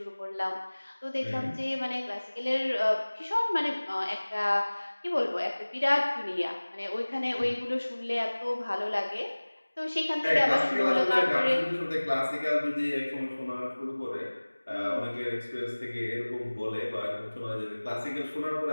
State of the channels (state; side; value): inverted; both; correlation -1.00